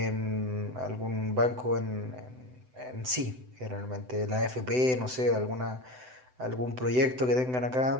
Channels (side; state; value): left; late; 7.9 ms